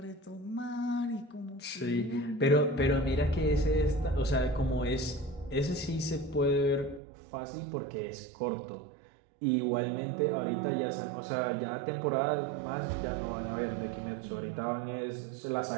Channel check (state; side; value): drops out; left; at 7.0 s